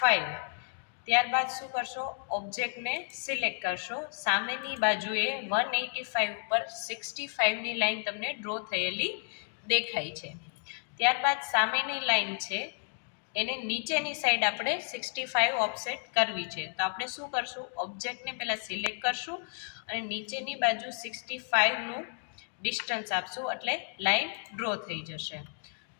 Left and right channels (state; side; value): silent; right; 57 dB below the other